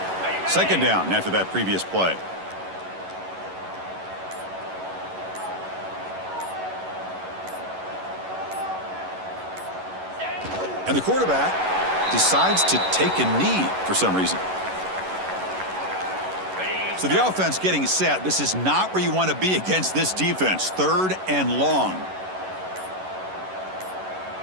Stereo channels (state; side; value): late; left; 11 ms